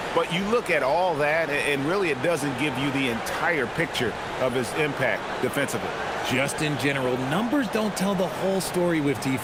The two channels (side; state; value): both; identical; correlation 1.00